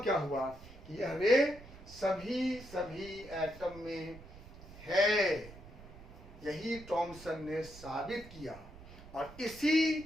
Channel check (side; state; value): right; noise; rumble, 17 dB below the sound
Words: क्या हुआ कि यह रे सभी एटम में है। यही टॉमसन ने साबित किया और इसी